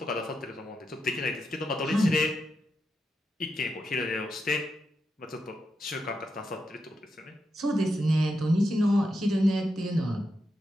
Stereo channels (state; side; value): normal; both; correlation 0.86